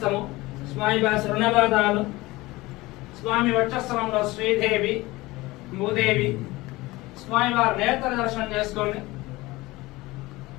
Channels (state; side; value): quieter; right; 20.4 dB